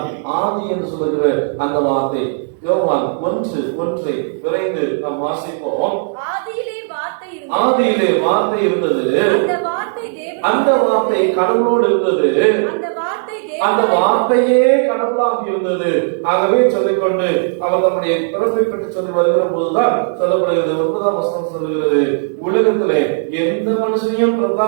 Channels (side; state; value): left; silent; digital silence